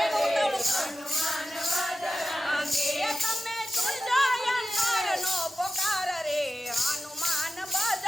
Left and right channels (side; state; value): both; normal; correlation 0.93